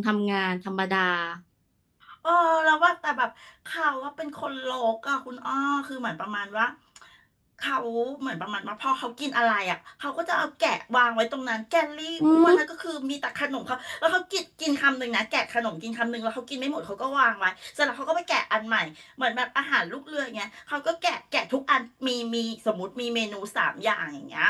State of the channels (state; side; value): identical; both; correlation 1.00